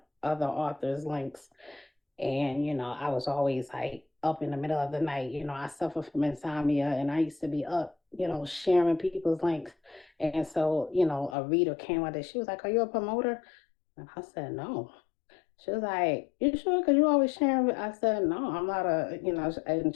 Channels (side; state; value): right; drops out; at 11.4 s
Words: other authors' links. And, I was always like up in the middle of the night. I suffer from insomnia and I used to be up, sharing people's links. And so, a reader came out there. She was like, "Are you a promoter?" And I said, "No." She was like, "You sure? Because you always sharing." I said, "No, I'm not and